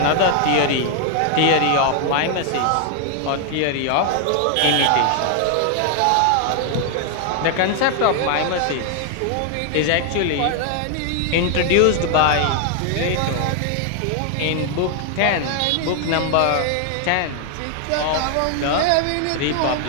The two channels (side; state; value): both; different; correlation 0.00